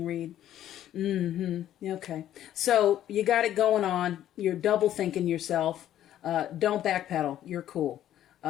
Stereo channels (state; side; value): quieter; right; 11.8 dB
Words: Okay. So you got it going on. You're double thinking yourself. Don't backpedal. You're cool.